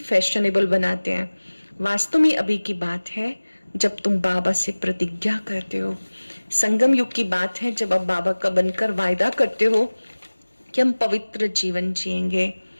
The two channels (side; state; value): both; inverted; correlation -1.00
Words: बनाते हैं। वास्तव में अभी की बात है जब तुम बाबा से प्रतिज्ञा करते हो। संगम युग की बात है जब अब बाबा का बनकर वायदा करते हो कि हम पवित्र जीवन जिएंगे,